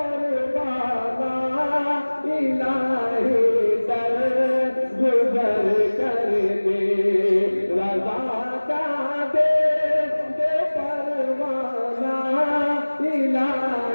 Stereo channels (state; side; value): inverted; both; correlation -1.00